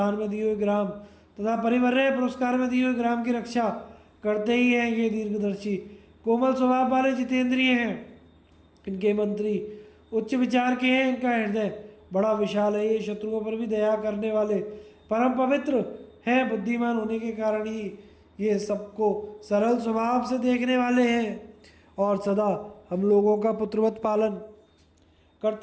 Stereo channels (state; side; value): identical; both; correlation 1.00